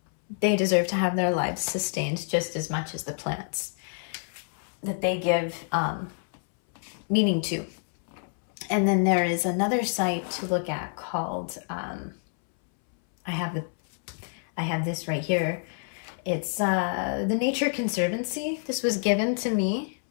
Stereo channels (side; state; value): right; silent; 60 dB below the other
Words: They deserve to have their lives sustained just as much as the plants that they give meaning to. And then there is another site to look at called, I have this right here. It's the Nature Conservancy. This was given to me